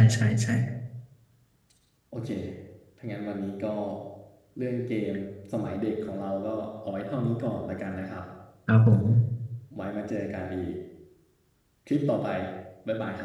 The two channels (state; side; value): identical; both; correlation 1.00